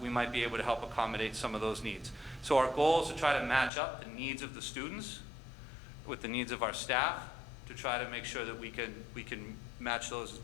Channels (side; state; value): right; drops out; at 3.7 s